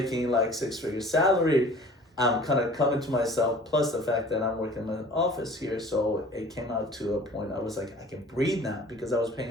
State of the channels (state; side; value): normal; both; correlation 0.46